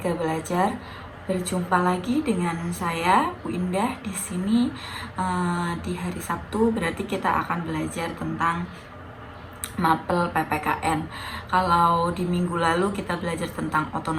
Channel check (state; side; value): identical; both; correlation 1.00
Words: belajar, berjumpa lagi dengan saya Bu Indah di sini di hari Sabtu. Berarti kita akan belajar tentang mapel PPKN. Kalau di minggu lalu kita belajar tentang